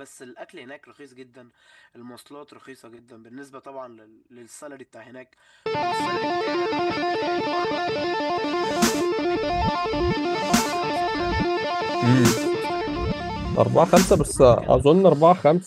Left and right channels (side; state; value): both; identical; correlation 1.00